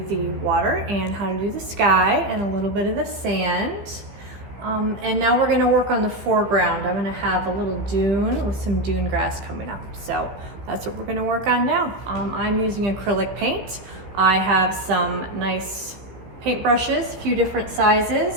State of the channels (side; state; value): left; late; 15 ms